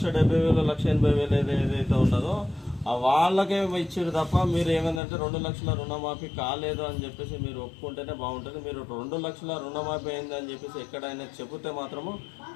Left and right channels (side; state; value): right; drops out; at 5.0 s